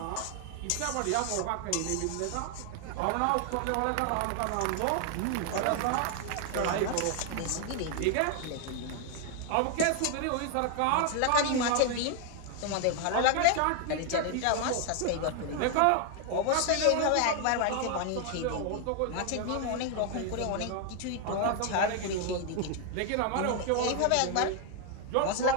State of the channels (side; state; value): both; different; correlation 0.00